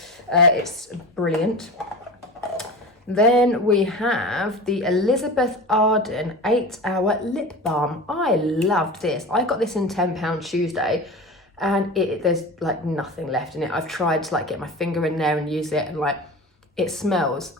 It's brilliant. Then we have the Elizabeth Arden 8-Hour Lip Balm. I loved this. I got this in £10 Tuesday. And there's like nothing left in it. I've tried to like get my finger in there and use it, and like it smells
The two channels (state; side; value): normal; both; correlation 0.31